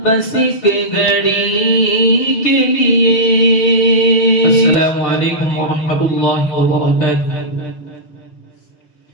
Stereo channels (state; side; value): late; right; 6.7 ms